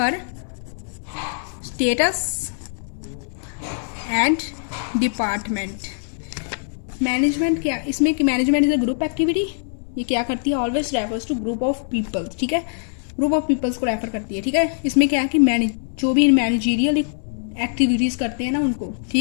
status and department. Management क्या, इसमें management is a group activity. ये क्या करती है, always refers to group of people, ठीक है। ग्रुप ऑफ पीपल्स को रेफर करती है, ठीक है। इसमें क्या है कि जो भी मैनेजरियल एक्टिविटीज़ करते हैं ना उनको,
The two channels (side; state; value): right; silent; 60 dB below the other